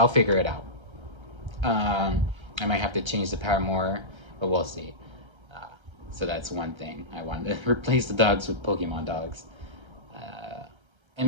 figure it out. I might have to change the Paramore, but we'll see. So that's one thing. I wanted to replace the dogs with Pokemon dogs. And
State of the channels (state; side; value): late; left; 1.3 ms